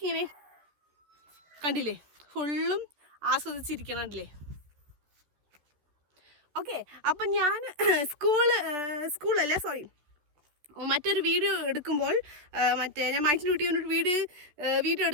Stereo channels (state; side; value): late; left; 13 ms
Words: ഇങ്ങനെ കണ്ടില്ലേ, ഫുള്ളും ആസ്വദിച്ചിരിക്കണല്ലേ. ഓക്കെ, അപ്പം ഞാൻ സ്കൂളല്ല മറ്റൊരു വീഡിയോ എടുക്കുമ്പോൾ ഞാൻ മൈറ്റിൽ കുട്ടിയൊരു വീഡിയോ